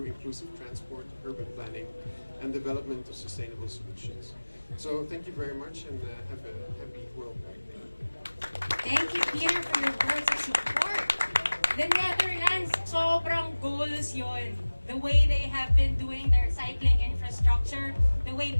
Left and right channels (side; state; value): both; inverted; correlation -1.00